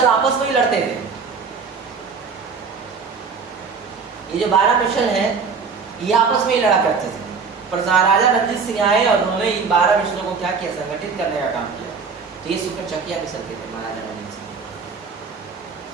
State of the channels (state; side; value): quieter; left; 5.3 dB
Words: आपस में ही लड़ते थे। ये जो 12 मिसल है ये आपस में ही लड़ा करते थे, पर महाराजा रणजीत सिंह आए और उन्होंने इन 12 मिसलों को क्या किया, संगठित करने का काम किया। तो ये सुकर चकिया मिसल के थे महाराजा रणजीत सिंह।